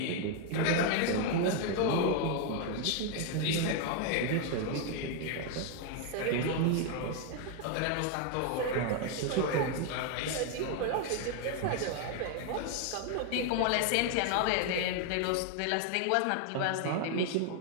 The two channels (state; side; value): different; both; correlation 0.01